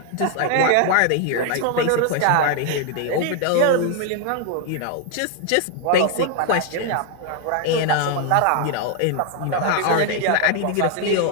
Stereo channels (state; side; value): different; both; correlation 0.00